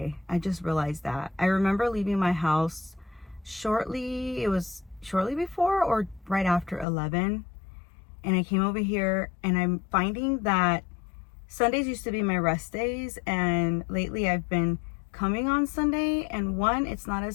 I just realized that. I remember leaving my house shortly before or right after 11. And I came over here and I'm finding that Sundays used to be my rest days, and lately I've been coming on Sunday, and one, it's not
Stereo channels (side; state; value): right; drops out; at 6.9 s